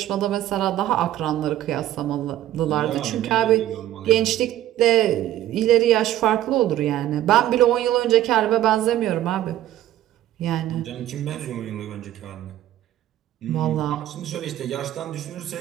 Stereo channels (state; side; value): quieter; left; 13.2 dB